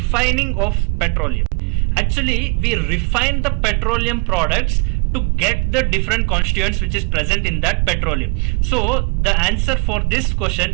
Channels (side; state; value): left; quieter; 32.3 dB